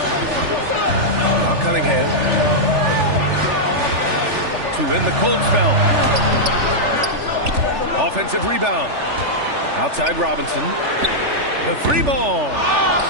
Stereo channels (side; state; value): left; late; 3.4 ms